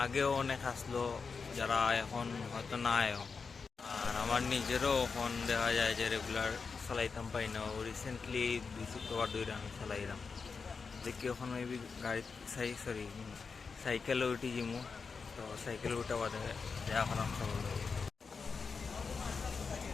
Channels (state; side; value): quieter; right; 5.1 dB